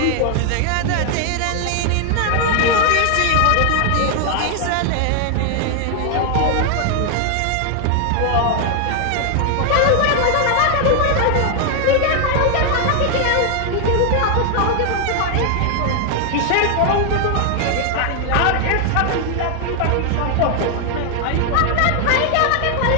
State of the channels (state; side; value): different; both; correlation 0.00